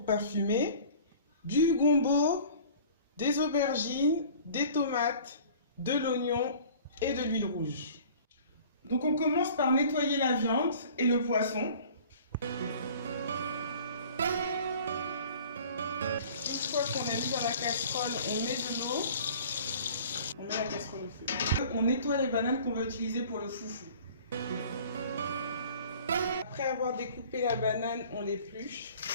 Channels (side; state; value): both; inverted; correlation -0.47